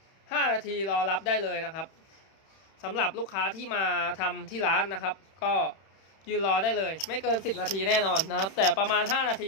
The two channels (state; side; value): late; right; 31 ms